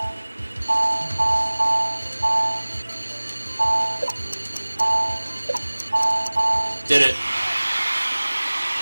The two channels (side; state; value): both; inverted; correlation -1.00